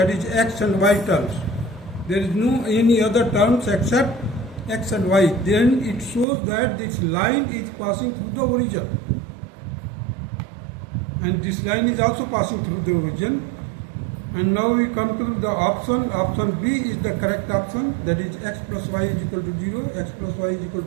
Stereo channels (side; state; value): left; drops out; at 6.2 s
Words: is x and y terms, there is no any other terms except x and y, then it shows that this line is passing through the origin. And this line is also passing through the origin. And now we come to the option. Option B is the correct option. That is x plus y is equal to 0. X plus y is equal